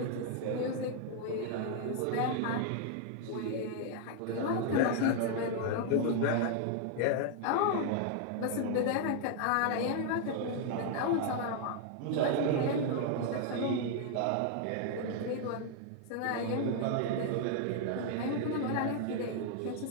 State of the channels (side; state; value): both; different; correlation 0.00